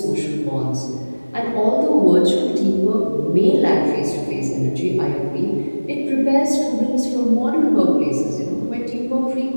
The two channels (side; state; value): both; inverted; correlation -1.00